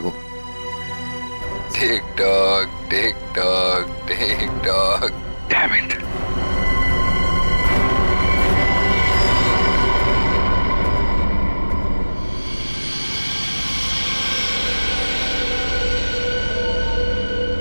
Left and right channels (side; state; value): both; inverted; correlation -1.00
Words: Tick tock tick tock tick tock. Damn it.